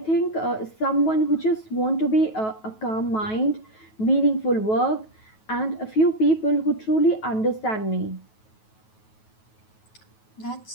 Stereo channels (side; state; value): right; late; 9.2 ms